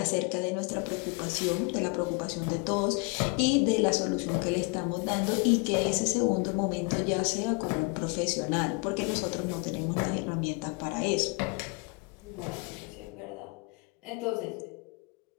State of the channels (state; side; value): quieter; right; 29.5 dB